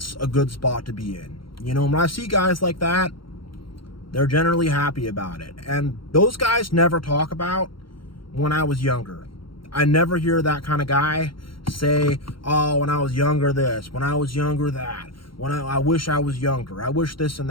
a good spot to be in. You know, when I see guys like that, they're generally happy about it. And those guys never talk about when I was younger. I never hear that kind of guy say, oh, when I was younger this, when I was younger that, when I wish I was younger, I wish this and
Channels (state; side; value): late; right; 0.73 ms